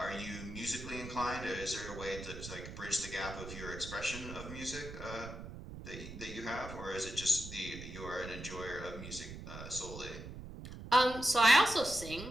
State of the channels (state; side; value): noise; right; rumble, 11 dB below the sound